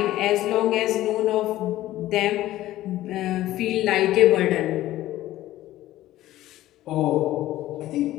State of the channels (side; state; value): right; quieter; 14.9 dB